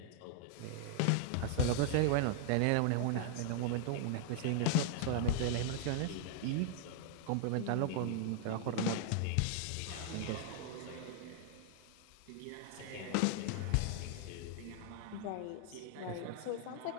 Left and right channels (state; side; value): different; both; correlation -0.01